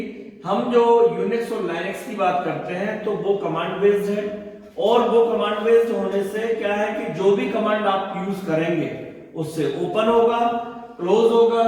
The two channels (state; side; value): identical; both; correlation 1.00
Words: हम जो यूनिक्स और लाइनक्स की बात करते हैं तो वो कमांड बेस्ड है। और वो कमांड बेस्ड होने से क्या है कि जो भी कमांड आप यूज करेंगे उससे ओपन होगा, क्लोज होगा,